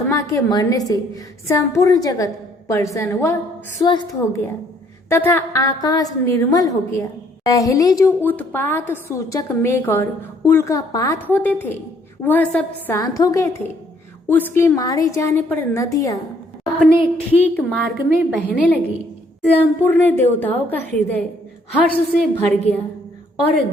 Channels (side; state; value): both; normal; correlation 0.65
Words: के मरने से संपूर्ण जगत प्रसन्न व स्वस्थ हो गया तथा आकाश निर्मल हो गया। पहले जो उत्पात सूचक मेघ और उल्कापात होते थे वह सब शांत हो गए थे। उसके मारे जाने पर नदियां अपने ठीक मार्ग में बहने लगी। संपूर्ण देवताओं का हृदय हर्ष से भर गया और